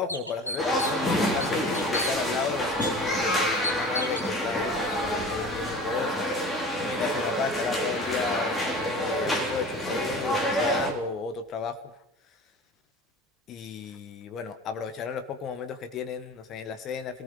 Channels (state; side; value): normal; both; correlation 0.38